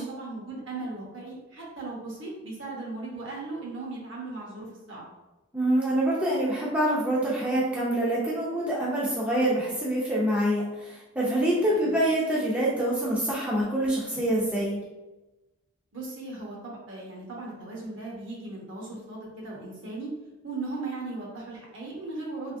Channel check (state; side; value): normal; both; correlation 0.45